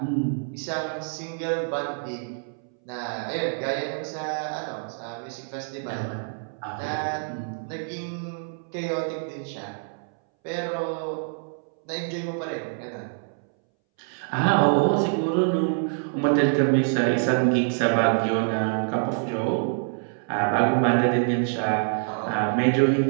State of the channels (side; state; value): left; silent; 61 dB below the other